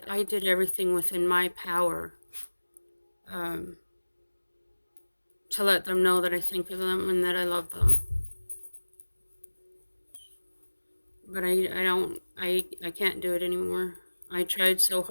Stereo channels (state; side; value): inverted; both; correlation -1.00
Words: I did everything within my power um, to let them know that I think of them and that I love them. But I can't do it anymore. I tried so